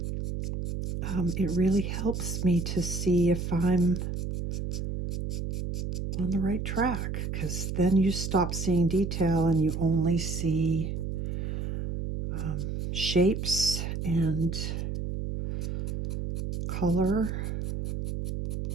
it really helps me to see if I'm on the right track, because then you stop seeing detail and you only see shapes and color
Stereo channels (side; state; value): right; noise; hum, 3 dB below the sound